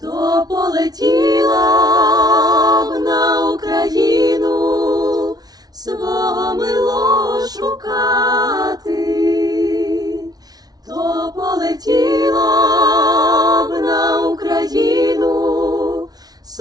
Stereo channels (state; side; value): late; left; 0.19 ms